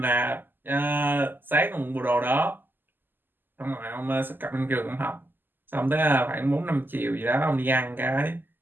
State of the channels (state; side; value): late; left; 0.092 ms